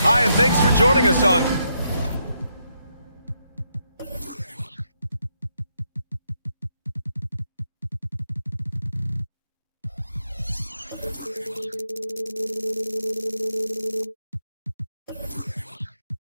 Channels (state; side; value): inverted; both; correlation -0.80